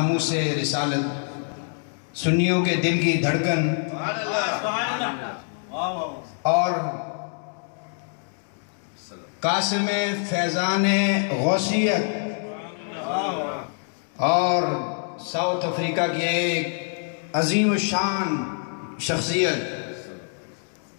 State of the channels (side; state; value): right; silent; 56 dB below the other